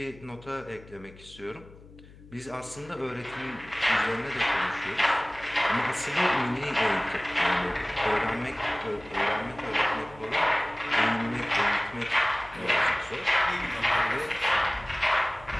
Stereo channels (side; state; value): left; noise; hum, 21 dB below the sound